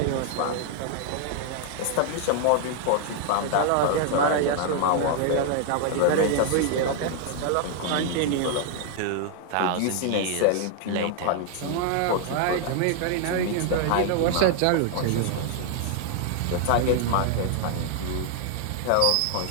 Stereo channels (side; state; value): both; different; correlation 0.00